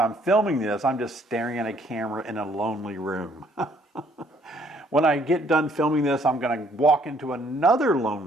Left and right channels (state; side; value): normal; both; correlation 0.64